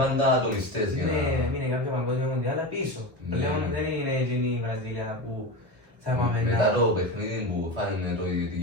πάντα ατομιστές για να... Έμεινε κάποια παγκόσμια μοντιάλα πίσω. Πλέον δεν είναι εκείνη η Βραζιλία που θα πάμε να... Μετά το παιχνίδι που φάνε το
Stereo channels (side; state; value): left; late; 1.2 ms